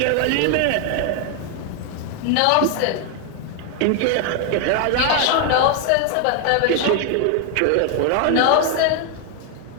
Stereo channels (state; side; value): different; both; correlation 0.01